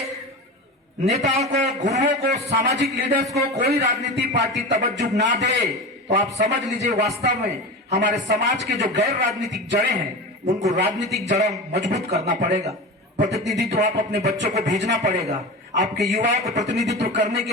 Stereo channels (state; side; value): normal; both; correlation 0.27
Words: नेताओं को, गुरुओं को, सामाजिक लीडर्स को कोई राजनीति पार्टी तवज्जो ना दे, तो आप समझ लीजिए वास्तव में हमारे समाज के जो गैर राजनीतिक जड़ें हैं, उनको राजनीतिक जड़ें मजबूत करना पड़ेगा। प्रतिनिधित्व आप अपने बच्चों को भेजना पड़ेगा, आपके युवाओं को प्रतिनिधित्व करने के